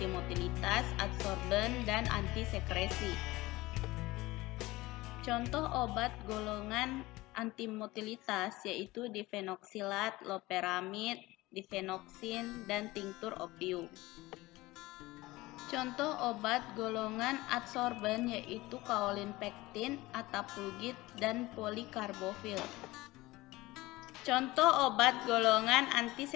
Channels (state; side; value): quieter; right; 19.7 dB